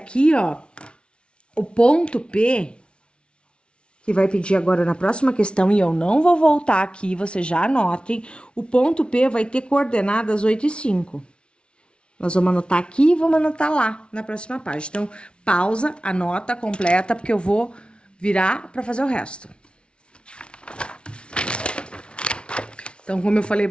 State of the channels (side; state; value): right; late; 0.058 ms